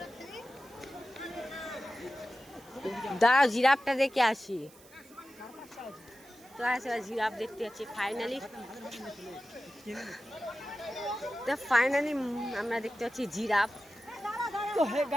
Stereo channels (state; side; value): noise; right; hiss, 24 dB below the sound